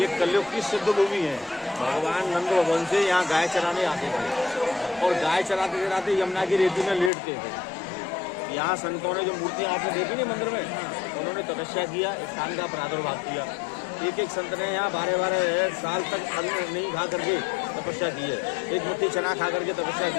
कलयुग की सिद्ध भूमि है। भगवान नंद भवन से यहाँ गाय चराने आते थे और गाय चराते चराते यमुना की रेती में लेटते थे। यहाँ संतों ने जो मूर्तियाँ आपने देखी नहीं मंदिर में, उन्होंने तपस्या किया, स्थान का प्रादुर्भाव किया। एक एक संत ने यहाँ 12-12 साल तक अन्न नहीं खा करके तपस्या की है, एक मुट्ठी चना खा करके तपस्या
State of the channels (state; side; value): drops out; right; at 7.1 s